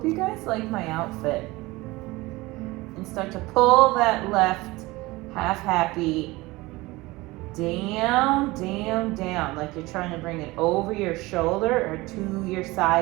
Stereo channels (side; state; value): left; quieter; 21.0 dB